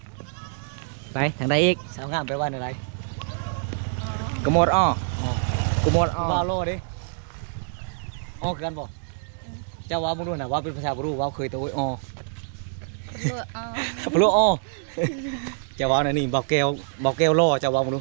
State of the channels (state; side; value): silent; left; digital silence